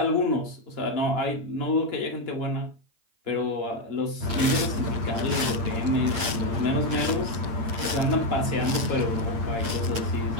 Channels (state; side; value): late; left; 8.7 ms